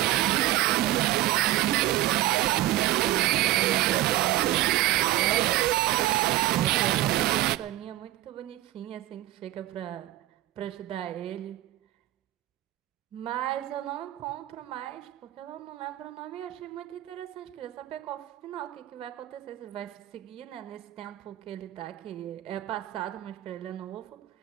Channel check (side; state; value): left; quieter; 15.3 dB